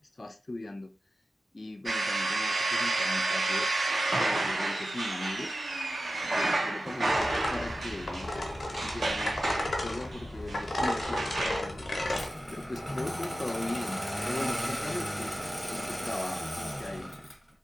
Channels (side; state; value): both; normal; correlation 0.93